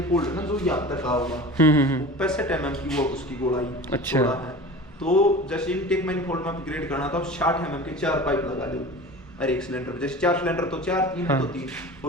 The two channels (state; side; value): normal; both; correlation 0.37